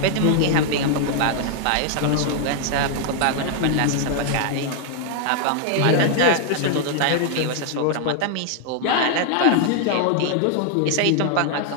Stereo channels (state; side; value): different; both; correlation 0.00